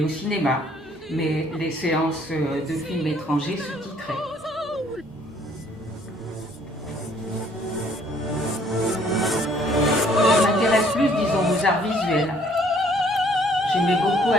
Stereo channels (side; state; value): both; normal; correlation 0.61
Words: au cinéma, mais les séances de films étrangers sous-titrés. Je m'intéresse plus, disons, aux arts visuels. J'aimais beaucoup